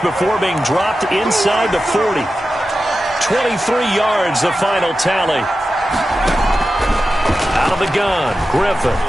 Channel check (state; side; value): normal; both; correlation 0.92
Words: being dropped inside the 40. 23 yards, the final tally. Out of the gun, Griffin.